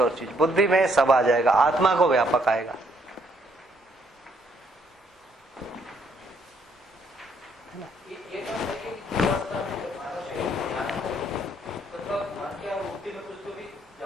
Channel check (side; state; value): both; normal; correlation 0.69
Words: चीज, बुद्धि में सब आ जाएगा, आत्मा को व्यापक आएगा। ये बात है कि जीवावस्था में जब हमारा शरीर ध्यान हो, मतलब मन की और वृत्ति में कुछ तो भी